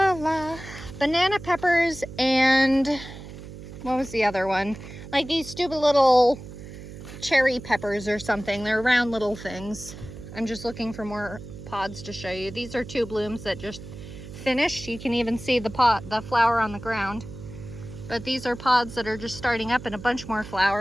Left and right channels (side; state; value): right; noise; hum, 13 dB below the sound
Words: banana peppers and what was the other one? Like these stupid little cherry peppers or something. They're round little things. I'm just looking for more pods to show you. These are 2 blooms that just finished. You can even see the flower on the ground. But these are pods that are just starting up and a bunch more